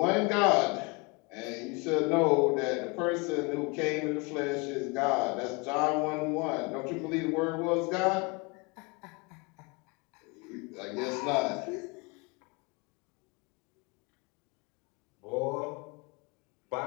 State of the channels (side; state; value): right; quieter; 28.2 dB